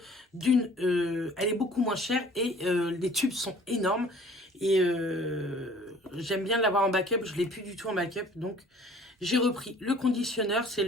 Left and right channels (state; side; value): normal; both; correlation 0.51